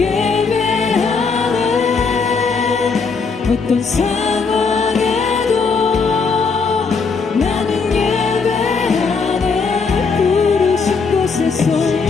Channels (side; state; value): right; quieter; 4.9 dB